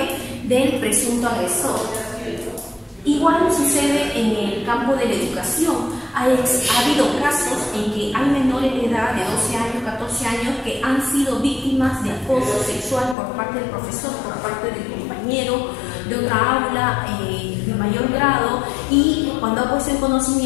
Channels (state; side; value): drops out; right; at 13.2 s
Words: del presunto agresor. Igual sucede en el campo de la educación. Ha habido casos en que hay menores de edad de 12 años, 14 años que han sido víctimas de acoso sexual por parte del profesor, por parte del compañero de otra aula de mayor grado, y cuando ha puesto en